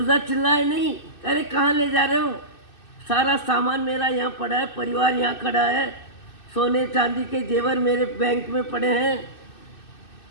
चिल्लाए नहीं, अरे कहाँ ले जा रहे हो? सारा सामान मेरा यहाँ पड़ा है, परिवार यहाँ खड़ा है, सोने चांदी के जेवर मेरे बैंक में पड़े हैं,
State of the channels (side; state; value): right; late; 2.6 ms